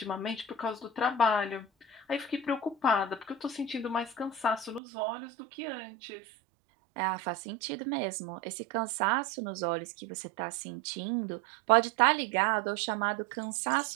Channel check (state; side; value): drops out; left; at 4.8 s